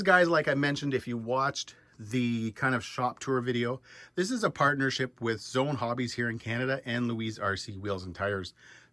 guys, like I mentioned, if you watched the kind of shop tour video, this is a partnership with Zone Hobbies here in Canada and Louise RC Wheels and Tires.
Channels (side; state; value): both; identical; correlation 1.00